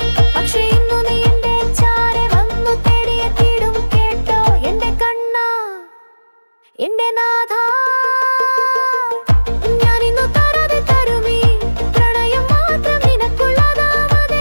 പക്ഷേ ഇന്നു നീ എന്റെ ചാരെ വന്നു തേടിയെത്തിയിടും. കേട്ടോ എന്റെ കണ്ണാ, എന്റെ നാഥാ, ഞാനിന്നു തരാതെ തരുമീ പ്രണയം മാത്രം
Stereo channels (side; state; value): both; inverted; correlation -1.00